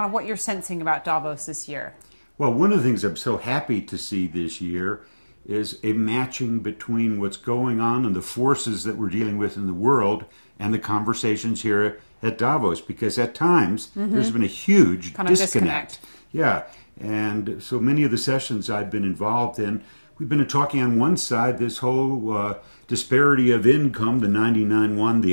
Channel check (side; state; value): both; inverted; correlation -1.00